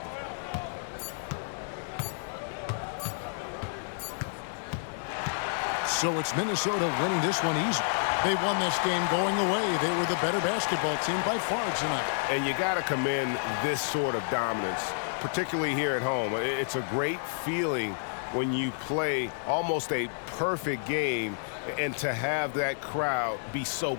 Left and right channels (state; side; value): silent; right; digital silence